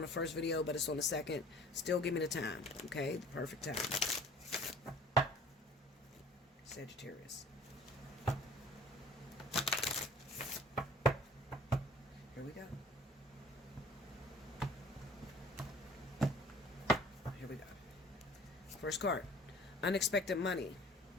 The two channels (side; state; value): both; normal; correlation 0.48